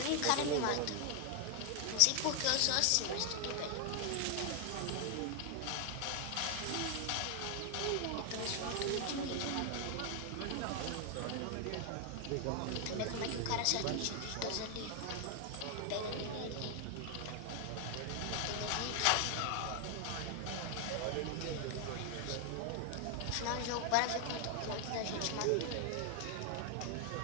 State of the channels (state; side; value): different; both; correlation 0.00